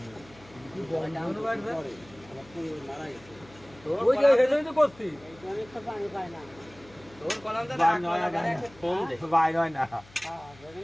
কি বন্ধ বাড়বে আমার তো মারা গেছে ওই যে হেডই তো করছি অনেক তো পানি পায় না তোর কলামটা ভাই নয় না ফোন দে ভাই নয় না হ্যাঁ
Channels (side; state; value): left; noise; hum, 24 dB below the sound